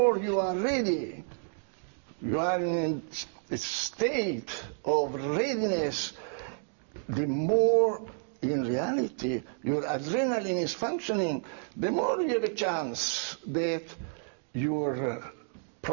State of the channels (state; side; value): silent; left; digital silence